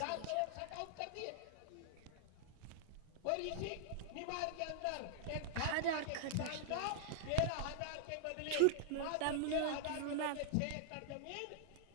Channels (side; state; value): both; different; correlation -0.01